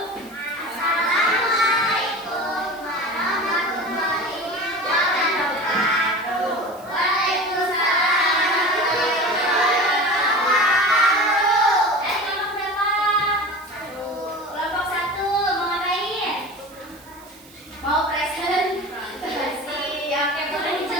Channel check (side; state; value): right; noise; hiss, 23 dB below the sound